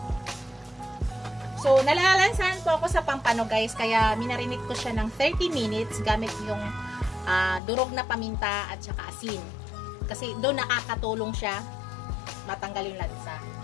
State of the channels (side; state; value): right; drops out; at 7.6 s